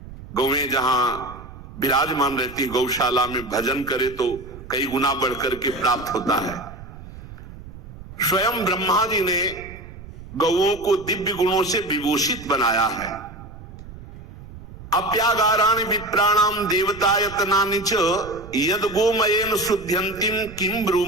गौएं जहां विराजमान रहती, गौशाला में भजन करे तो कई गुना बढ़कर के प्राप्त होता है। स्वयं ब्रह्मा जी ने गौओं को दिव्य गुणों से विभूषित बनाया है। अप्यागाराणि विप्राणाम देवतायतनानि च यद गोमयेन शुद्ध्यन्तिम किम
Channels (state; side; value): noise; right; rumble, 15 dB below the sound